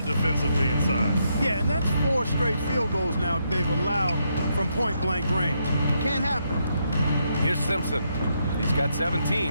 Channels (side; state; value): both; inverted; correlation -0.78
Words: defensively inside. Yeah, and that's 4 straight field goals now they've allowed from point-blank range. Can't happen. Here's Simpson. He's got 17.